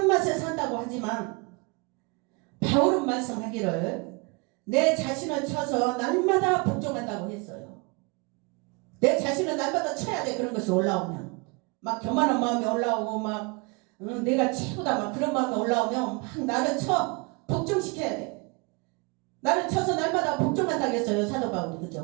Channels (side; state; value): left; quieter; 30.3 dB